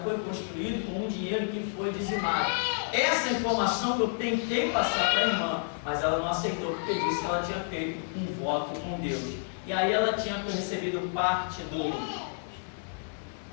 construído com um dinheiro que foi dizimado. Essa informação que eu tentei passar para a irmã, mas ela não aceitou, porque disse que ela tinha feito um voto com Deus. E aí ela tinha recebido parte do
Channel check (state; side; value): silent; right; digital silence